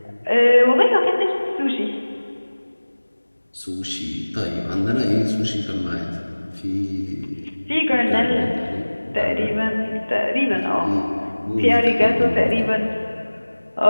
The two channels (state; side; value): inverted; both; correlation -1.00